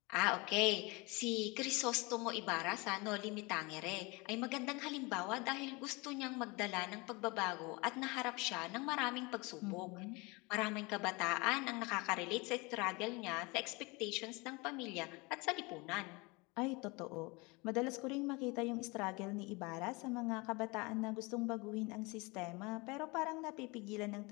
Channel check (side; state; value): right; quieter; 26.2 dB